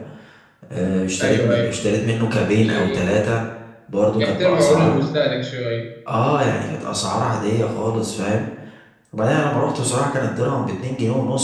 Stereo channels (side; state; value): both; identical; correlation 1.00